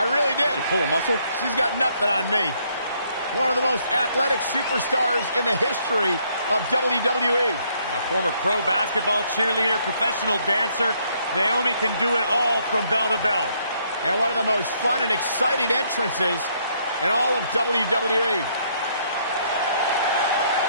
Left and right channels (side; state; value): both; inverted; correlation -0.69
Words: I really did. Did you pull a muscle? She's got nothing on me. One of the most athletic superstars in the history of WWE. A former pro basketball cheerleader, professional dancer, Naomi can do it all from bell to bell. And one of the most fun and exciting entrances in all of WWE.